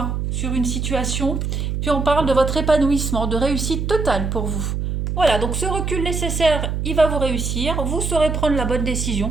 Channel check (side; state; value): right; noise; hum, 2 dB below the sound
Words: sur une situation. Puis on parle de votre épanouissement, de réussite totale pour vous. Voilà, donc ce recul nécessaire, il va vous réussir. Vous saurez prendre la bonne